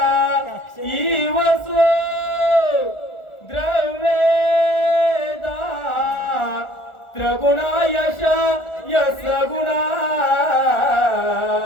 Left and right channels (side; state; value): right; late; 1.4 ms